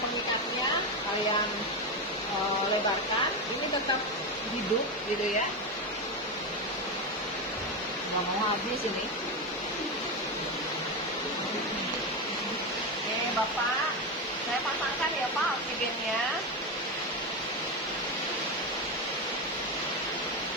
kalian lebarkan, ini tetap hidup gitu ya. Nggak mau habis ini. Oke Bapak, saya pasangkan ya Pak oksigennya.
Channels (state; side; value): normal; both; correlation 0.14